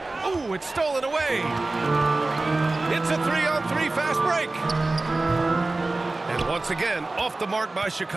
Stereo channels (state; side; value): quieter; left; 3.1 dB